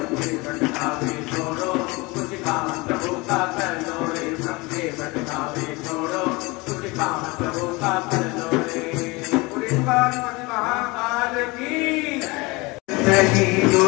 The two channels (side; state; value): right; quieter; 24.7 dB